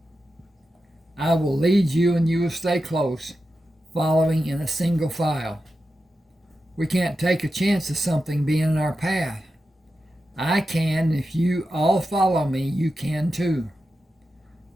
I will lead you and you will stay close, following in a single file. We can't take a chance of something being in our path. I can. If you all follow me, you can too.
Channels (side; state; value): both; normal; correlation 0.90